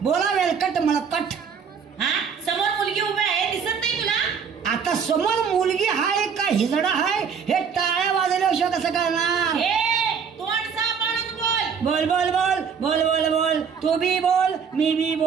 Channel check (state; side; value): quieter; left; 6.6 dB